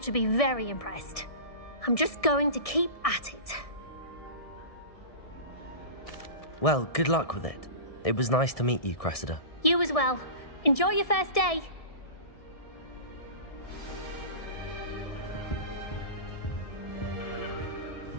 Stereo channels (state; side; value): late; right; 1.6 ms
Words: be very impressed. I'm just going to keep at it. Well, good luck with it. It was nice to meet you, Cressida. You as well. Enjoy your first day.